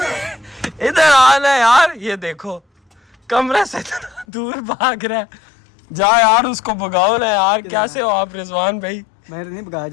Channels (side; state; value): right; drops out; at 4.2 s